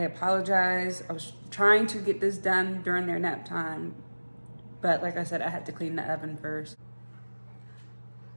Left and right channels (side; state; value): both; inverted; correlation -1.00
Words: I was trying to get this done during their nap time, but like I said, I had to clean the oven first.